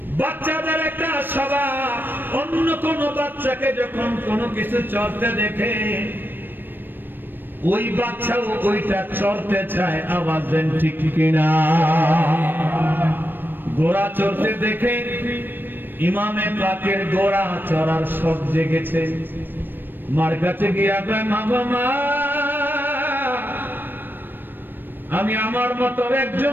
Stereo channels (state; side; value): late; left; 0.094 ms